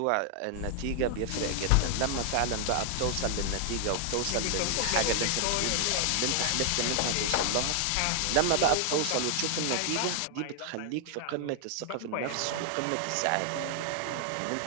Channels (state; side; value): different; both; correlation 0.00